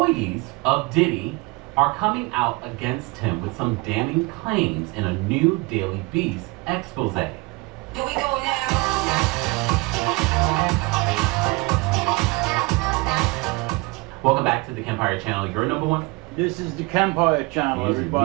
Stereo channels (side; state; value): left; quieter; 25.8 dB